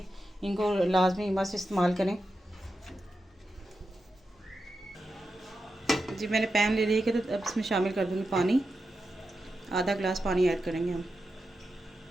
इनको लाजमी मस्त इस्तेमाल करें। जी मैंने पैन ले लिया कि तो अब इसमें शामिल कर दूँगी पानी। आधा गिलास पानी ऐड करेंगे हम।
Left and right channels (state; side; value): normal; both; correlation 0.89